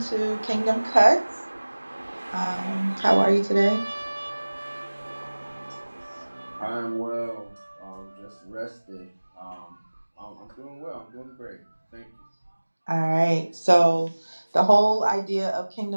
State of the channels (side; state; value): both; inverted; correlation -1.00